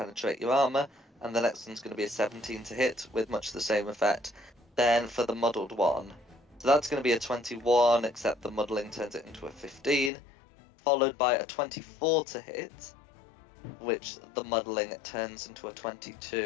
your armor, and the next one's going to be a 17 to hit with much the same effect. Then for the muddled one, so that's going to be a 21, except the muddling turns it into a 15, followed by a 24 to hit, which the muddling turns into a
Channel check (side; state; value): right; drops out; at 10.1 s